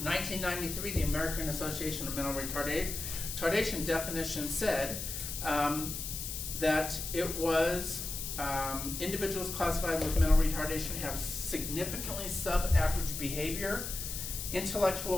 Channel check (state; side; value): noise; left; hiss, 5 dB below the sound